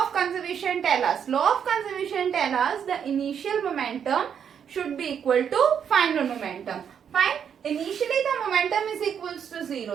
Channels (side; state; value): left; quieter; 8.0 dB